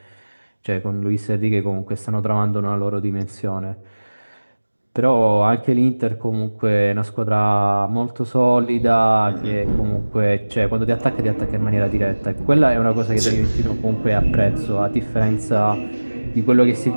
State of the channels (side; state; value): both; inverted; correlation -1.00